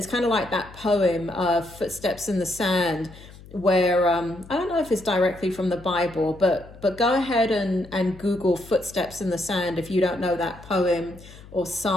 kind of like that poem, Footsteps in the Sand, where, I don't know if it's directly from the Bible, but go ahead and Google Footsteps in the Sand if you don't know that poem or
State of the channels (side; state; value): left; noise; hum, 19 dB below the sound